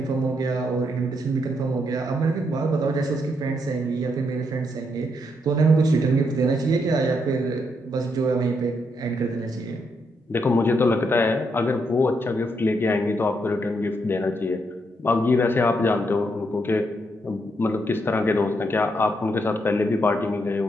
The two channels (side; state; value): both; normal; correlation 0.78